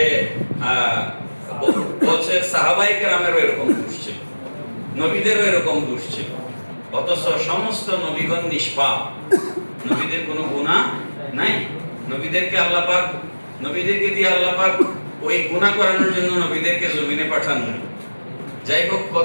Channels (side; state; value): both; inverted; correlation -1.00